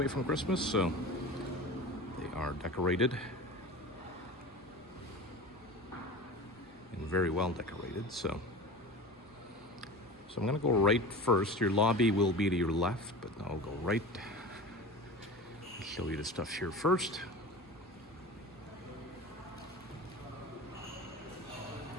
from Christmas, so they are decorated. And very well decorated, so I'm gonna go right first. Your lobby will be to your left, but I'll go right. I'll show you the stuff here first.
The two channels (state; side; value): normal; both; correlation 0.32